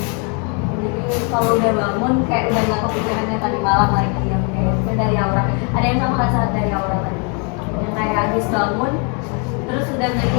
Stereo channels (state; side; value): quieter; right; 36.0 dB